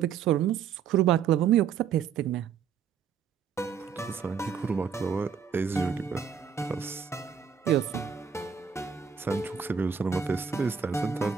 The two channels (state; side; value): quieter; left; 7.1 dB